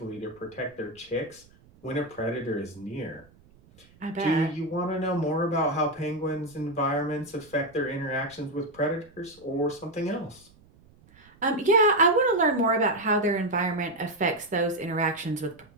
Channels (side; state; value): right; noise; rumble, 28 dB below the sound